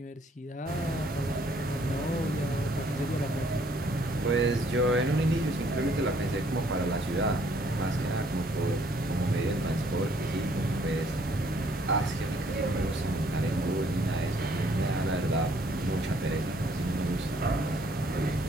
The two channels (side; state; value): both; normal; correlation 0.64